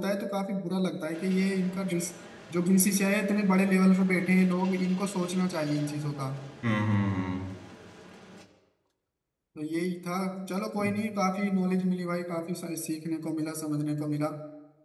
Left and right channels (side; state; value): both; identical; correlation 1.00